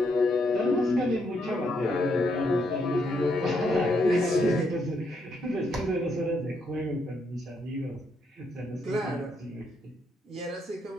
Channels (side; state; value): both; normal; correlation 0.76